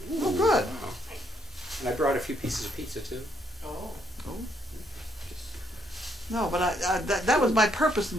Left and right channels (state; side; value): normal; both; correlation 0.73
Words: Oh, good. Wow. And I brought a few pieces of pizza too. Oh. No, but that was my purpose in